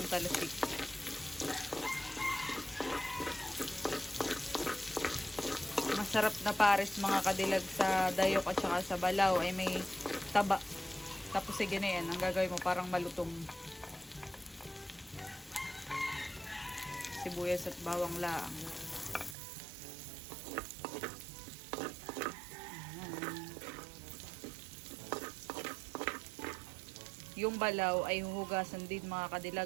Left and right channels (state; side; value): drops out; left; at 19.4 s